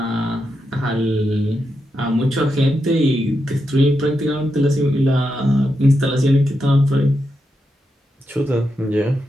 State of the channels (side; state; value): both; normal; correlation 0.85